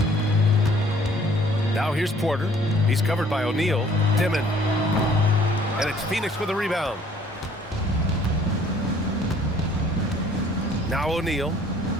Now here's Porter. He's covered by O'Neal. Dimon. And it's Phoenix with a rebound. Now O'Neal.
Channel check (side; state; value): both; normal; correlation 0.58